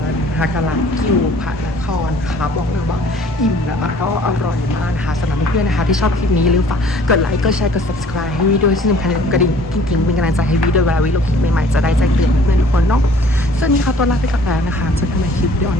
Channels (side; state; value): both; normal; correlation 0.53